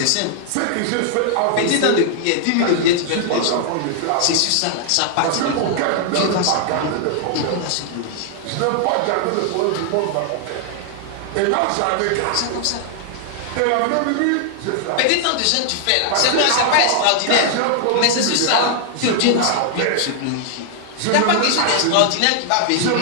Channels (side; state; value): both; different; correlation 0.00